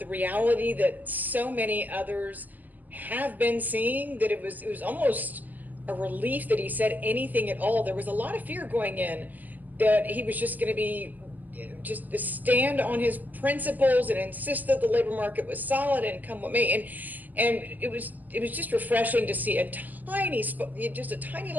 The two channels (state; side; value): late; left; 0.084 ms